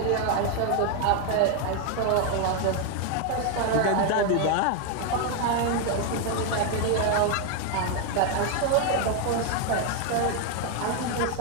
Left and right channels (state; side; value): different; both; correlation 0.01